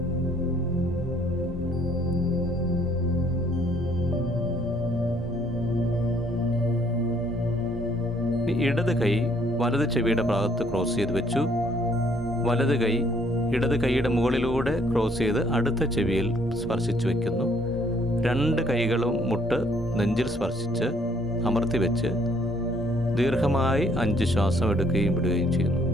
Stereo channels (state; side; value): normal; both; correlation 0.65